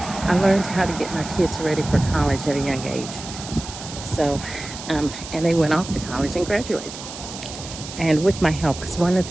I learned how to get my kids ready for college at a young age. So, and they went off to college and graduated. And with my help, because one of the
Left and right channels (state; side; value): noise; right; hiss, 12 dB below the sound